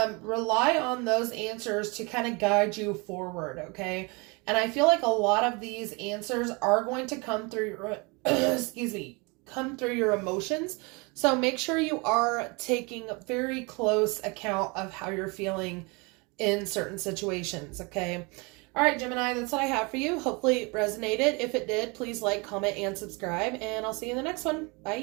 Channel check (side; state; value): left; quieter; 28.8 dB